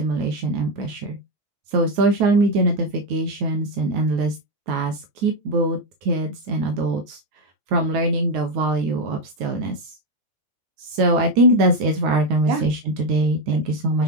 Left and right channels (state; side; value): late; left; 9.3 ms